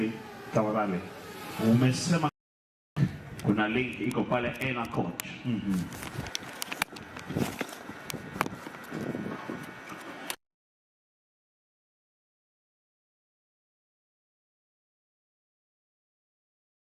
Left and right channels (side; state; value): both; identical; correlation 1.00